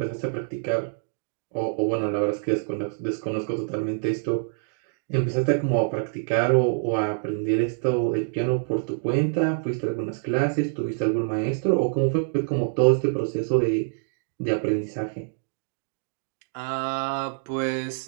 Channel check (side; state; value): left; silent; digital silence